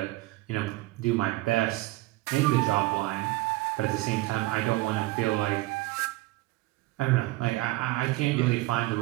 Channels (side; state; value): left; quieter; 19.8 dB